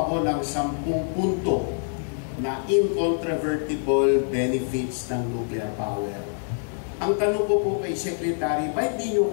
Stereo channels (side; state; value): right; silent; digital silence